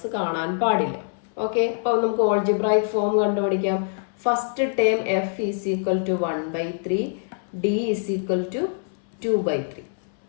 കാണാൻ പാടില്ല. ഓക്കെ, അപ്പോൾ നമുക്ക് ഓൾജിബ്രായിക് ഫോം കണ്ടുപിടിക്കാം. First term f is equal to 1/3, d is equal to 2/3.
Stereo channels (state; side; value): silent; right; 59 dB below the other